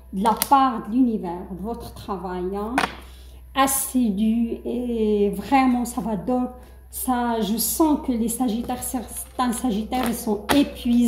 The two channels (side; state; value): both; identical; correlation 1.00